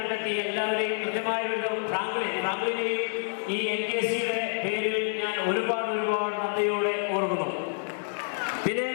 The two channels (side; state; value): right; silent; digital silence